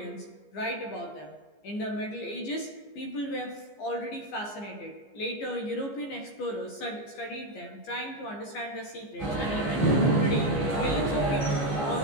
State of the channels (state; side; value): late; right; 15 ms